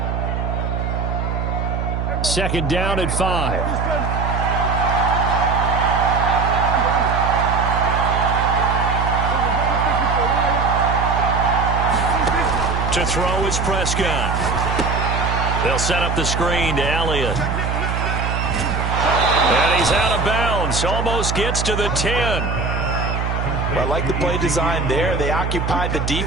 Second down at 5. To throw is Prescott. They'll set up the screen to Elliott. And he's out of bounds. Almost gets to the 10. I like the play design there. They occupied the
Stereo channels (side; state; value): right; noise; hum, 1 dB below the sound